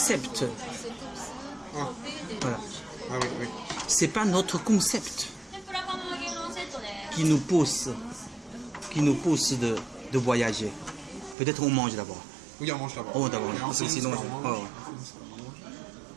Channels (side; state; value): left; drops out; at 11.4 s